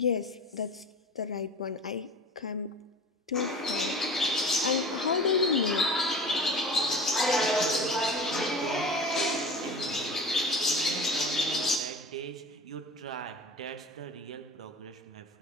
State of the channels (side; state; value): both; normal; correlation 0.37